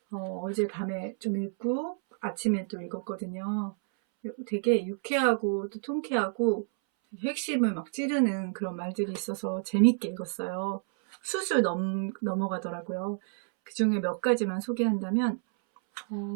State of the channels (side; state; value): left; silent; 58 dB below the other